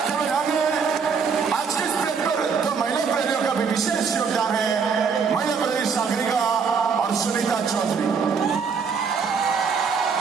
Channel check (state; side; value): quieter; left; 5.8 dB